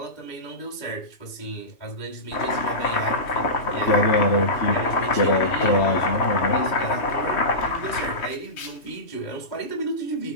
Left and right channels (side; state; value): right; late; 3.1 ms